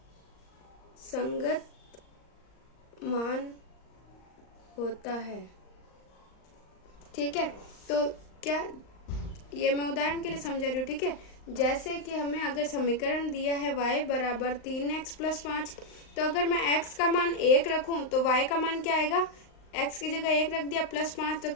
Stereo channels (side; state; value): right; late; 39 ms